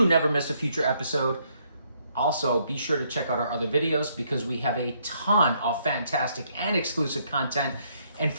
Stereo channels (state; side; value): inverted; both; correlation -0.71